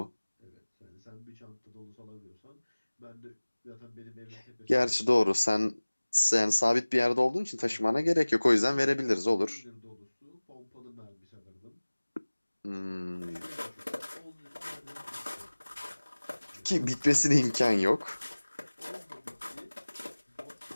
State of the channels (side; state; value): both; inverted; correlation -1.00